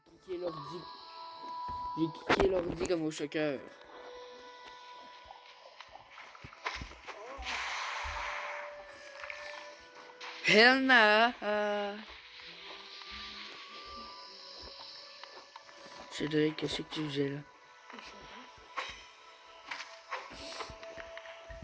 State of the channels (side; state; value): both; identical; correlation 1.00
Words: cliqué l'ordi. J'ai cliqué l'ordi comme au choqueur. Hell nah. Cédric, qu'est-ce que tu faisais là?